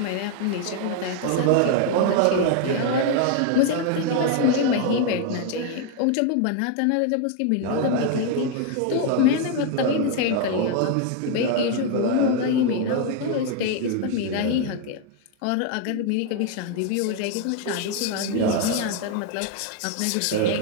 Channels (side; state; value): both; different; correlation 0.00